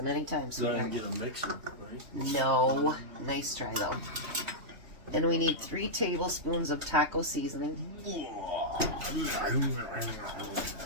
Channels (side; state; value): left; late; 3.1 ms